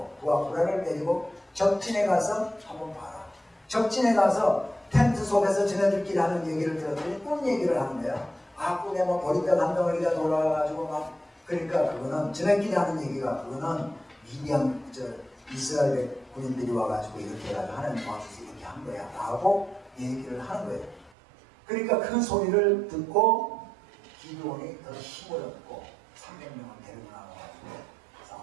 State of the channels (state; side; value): drops out; left; at 21.1 s